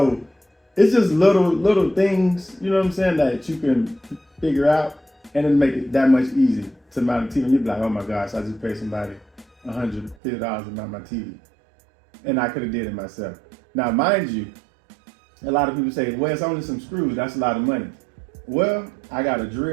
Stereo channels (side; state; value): left; drops out; at 10.2 s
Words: it's just little things, you know what I'm saying, that you can figure out, and it'll make it that much easier to mount a TV. And you'll be like, oh my gosh, I just paid somebody $150 to mount my TV, and I could have did it myself. Now, mind you, a lot of people say, well, it's only some screws. That's a lot of money. Well, I got a